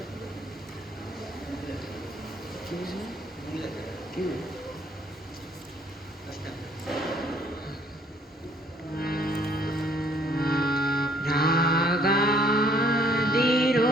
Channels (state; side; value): normal; both; correlation 0.62